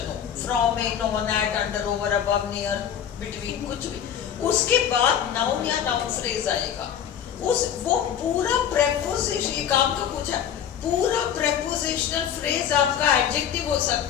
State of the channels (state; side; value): quieter; right; 9.1 dB